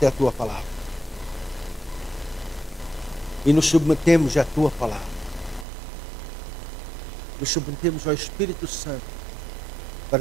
é a tua palavra. E nos submetemos à tua palavra. Nos submetemos ao Espírito Santo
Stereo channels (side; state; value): left; drops out; at 5.7 s